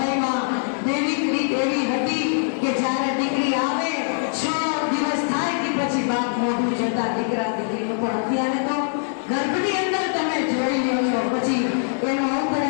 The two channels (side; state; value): right; silent; digital silence